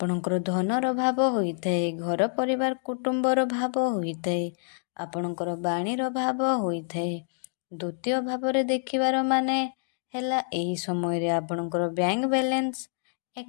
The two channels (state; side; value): silent; right; digital silence